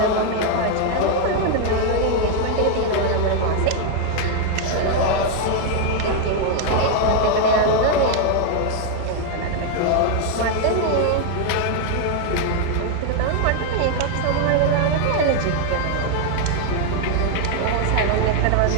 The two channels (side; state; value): both; different; correlation 0.00